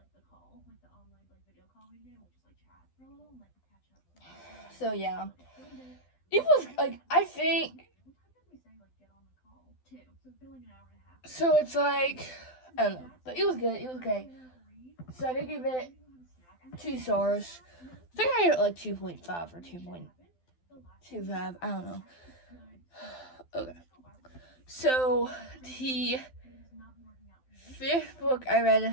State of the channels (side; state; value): right; late; 12 ms